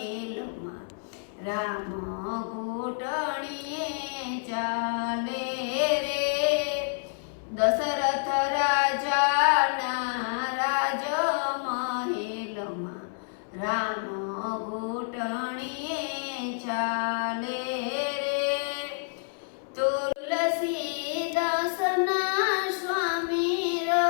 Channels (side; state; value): right; silent; 59 dB below the other